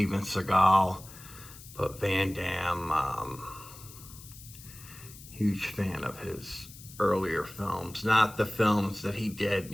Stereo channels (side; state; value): left; noise; hiss, 18 dB below the sound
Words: Seagal, but Van Damme, huge fan of his earlier films, not the films that he did,